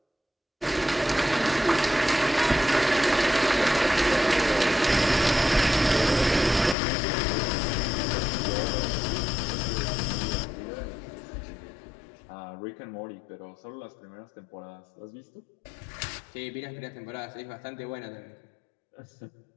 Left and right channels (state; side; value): drops out; right; at 6.8 s